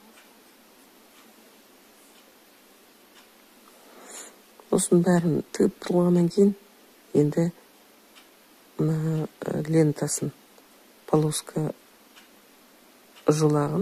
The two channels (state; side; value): identical; both; correlation 1.00